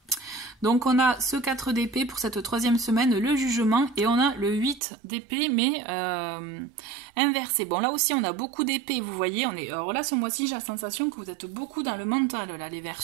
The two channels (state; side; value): drops out; left; at 4.8 s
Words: Donc on a ce 4 d'épée pour cette troisième semaine, le jugement, et on a le 8 d'épée mais inversé. Bon là aussi on a beaucoup d'épée, vous voyez, alors là ce mois-ci j'ai la sensation que vous êtes beaucoup dans le mental là les